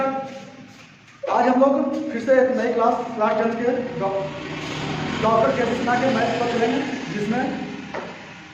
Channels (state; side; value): identical; both; correlation 1.00